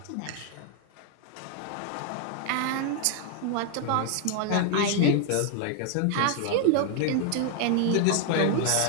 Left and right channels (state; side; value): different; both; correlation 0.00